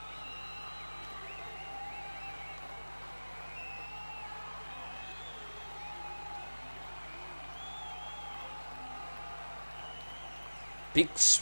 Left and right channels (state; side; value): inverted; both; correlation -1.00